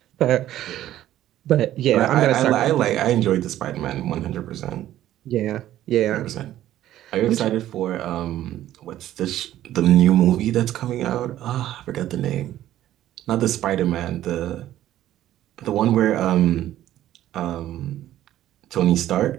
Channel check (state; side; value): quieter; left; 13.0 dB